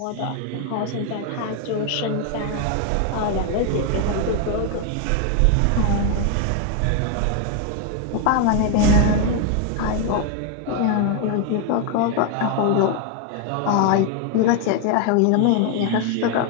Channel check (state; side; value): different; both; correlation 0.01